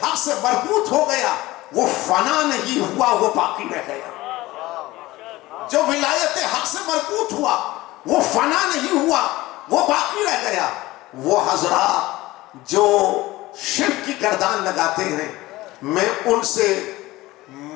حق سے مربوط ہو گیا وہ فنا نہیں ہوا، وہ باقی رہ گیا. جو ولایت حق سے مربوط ہوا وہ فنا نہیں ہوا، وہ باقی رہ گیا. وہ حضرات جو شرک کی گردان لگاتے ہیں میں ان سے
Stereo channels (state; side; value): quieter; right; 18.6 dB